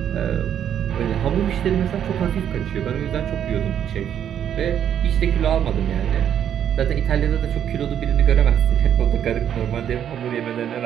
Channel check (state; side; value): quieter; left; 9.5 dB